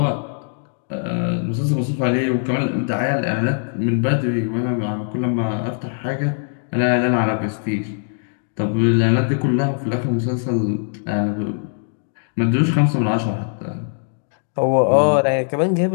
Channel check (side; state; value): right; silent; digital silence